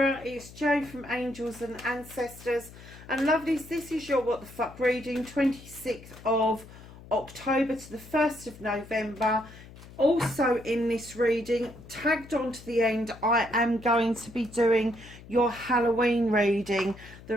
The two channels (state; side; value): noise; left; hum, 18 dB below the sound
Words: it's Jo from Angels and Ancestors. And lovelies, this is your What the Fuck reading, 26th of October to the 1st of November. Also in this reading, tagged on to the end, I am going to be doing your Halloween reading. The